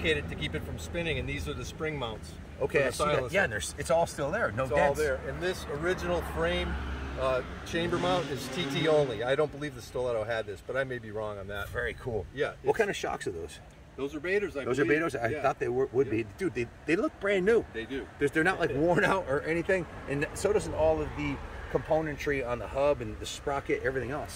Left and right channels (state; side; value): identical; both; correlation 1.00